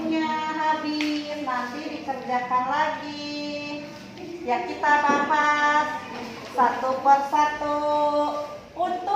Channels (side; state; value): both; identical; correlation 1.00